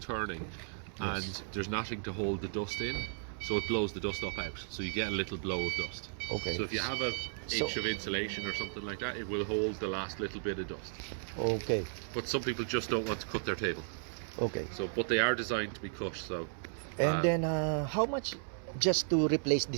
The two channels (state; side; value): silent; left; 55 dB below the other